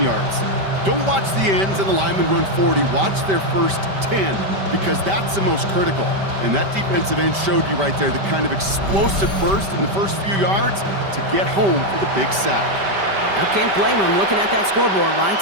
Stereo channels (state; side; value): late; left; 5.1 ms